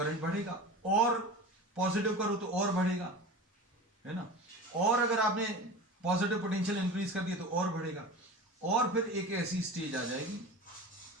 बढ़ेगा, और पॉजिटिव करो तो और बढ़ेगा, है ना। और अगर आपने पॉजिटिव पोटेंशियल इंक्रीज कर दिया तो और बढ़ेगा, और फिर एक ऐसी स्टेज आ जाएगी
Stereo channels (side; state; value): both; normal; correlation 0.33